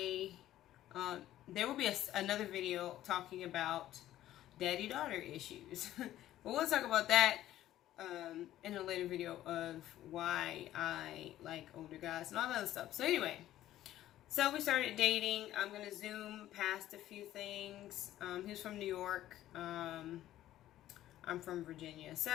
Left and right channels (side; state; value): right; quieter; 13.4 dB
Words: there will be another video talking about daddy-daughter issues. But we'll talk about that in a later video of why I like older guys and all that other stuff. So anyway, so we started dating. I'm going to zoom past a few things. He was from New York. I'm from Virginia.